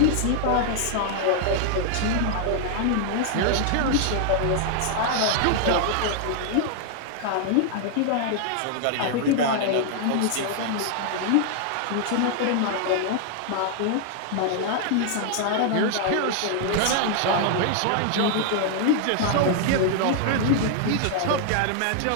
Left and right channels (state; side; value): different; both; correlation 0.00